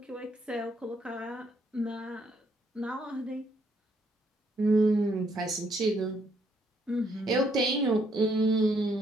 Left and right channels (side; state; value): both; normal; correlation 0.71